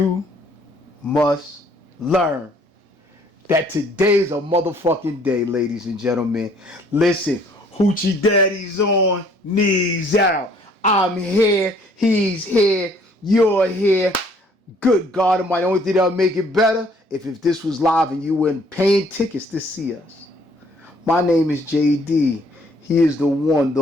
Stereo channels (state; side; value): normal; both; correlation 0.61